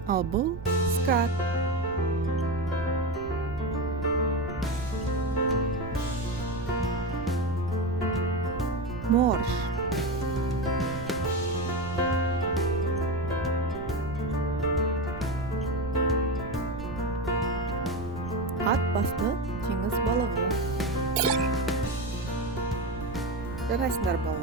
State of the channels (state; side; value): noise; right; rumble, 12 dB below the sound